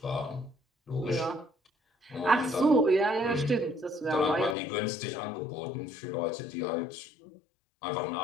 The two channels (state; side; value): drops out; right; at 4.5 s